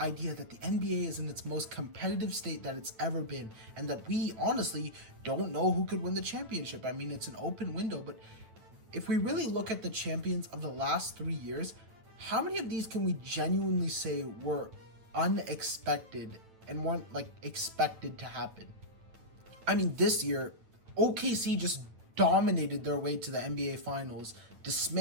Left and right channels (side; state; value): left; late; 9.0 ms